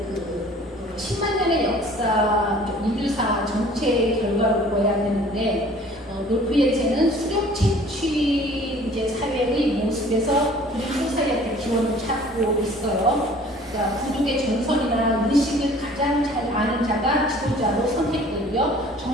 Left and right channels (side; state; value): both; normal; correlation 0.51